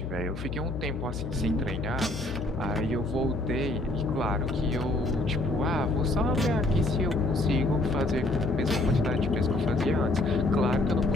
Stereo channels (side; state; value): left; noise; hum, 7 dB below the sound